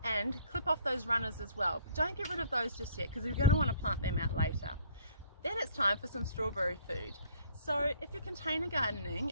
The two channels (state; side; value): inverted; both; correlation -0.57